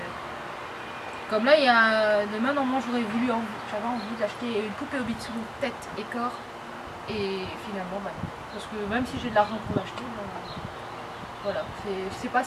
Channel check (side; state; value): both; identical; correlation 1.00